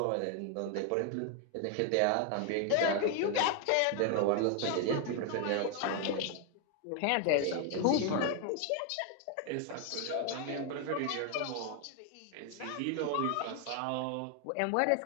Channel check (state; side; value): different; both; correlation 0.00